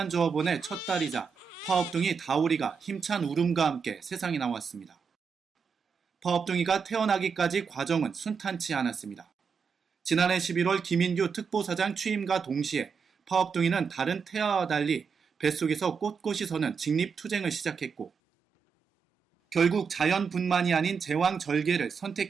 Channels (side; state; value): left; quieter; 5.9 dB